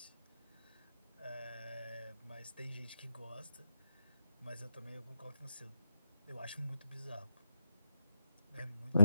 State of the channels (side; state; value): both; inverted; correlation -0.87